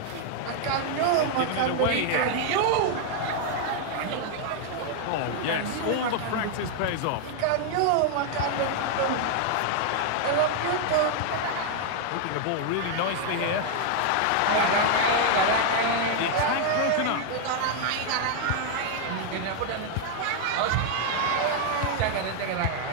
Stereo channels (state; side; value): different; both; correlation 0.00